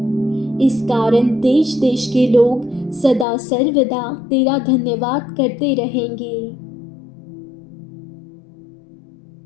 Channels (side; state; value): right; drops out; at 3.2 s